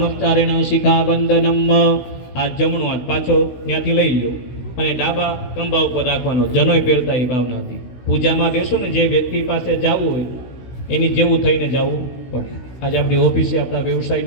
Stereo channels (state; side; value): late; right; 16 ms